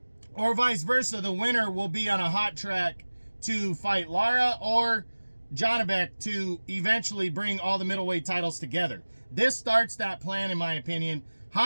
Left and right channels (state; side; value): inverted; both; correlation -1.00